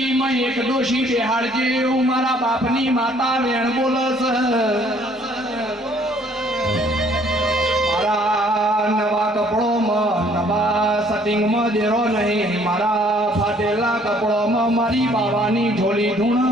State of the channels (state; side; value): normal; both; correlation 0.61